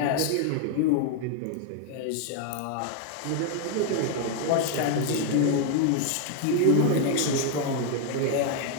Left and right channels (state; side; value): different; both; correlation 0.00